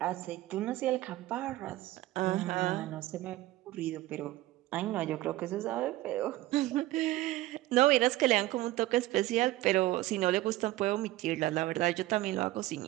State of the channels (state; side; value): quieter; left; 16.9 dB